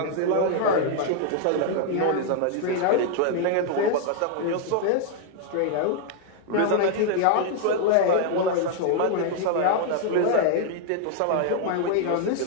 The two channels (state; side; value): different; both; correlation 0.00